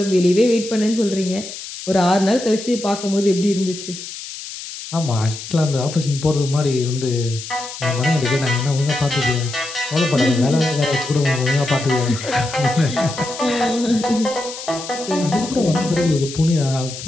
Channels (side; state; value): left; noise; hiss, 11 dB below the sound